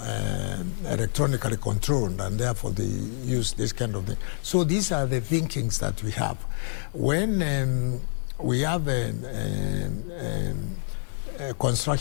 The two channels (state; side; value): silent; right; digital silence